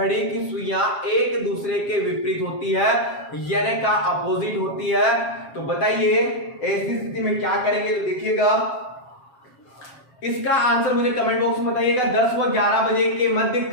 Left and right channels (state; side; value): late; right; 7.4 ms